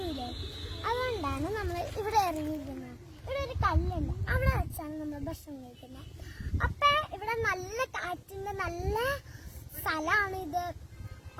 അതുകൊണ്ടാണ് നമ്മൾ ഇവിടെ ഇറങ്ങിയിരിക്കുന്നത്. ഇവിടെ ഒരു കല്ലുണ്ട്, അവിടെ വെച്ചാണ് നമ്മൾ ഭക്ഷണം കഴിക്കുന്നത്. അപ്പൊ ഇവിടെ നല്ല കാറ്റിന്റെ നല്ല സ്ഥലമാണ് ഇത്.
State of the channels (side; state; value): both; identical; correlation 1.00